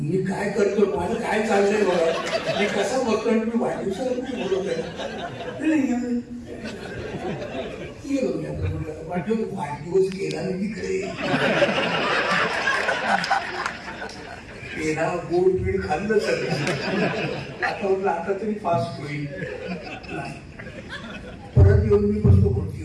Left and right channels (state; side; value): identical; both; correlation 1.00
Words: काय करतो, माझं काय चाललंय बघा, मी कसा बघतो आणि मी वाढदिवसाला कुठे बोलवतोय. वाढदिवस केला मी तिकडे पेढा गोड पीठ खाल्लं सगळं. आता तरी फास्ट होईल. परत येऊन मी बसतो